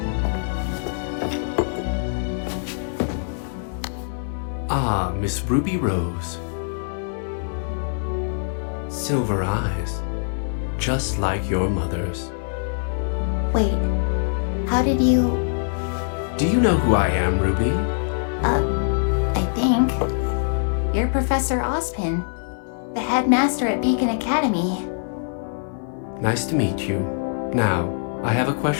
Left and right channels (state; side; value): silent; right; 63 dB below the other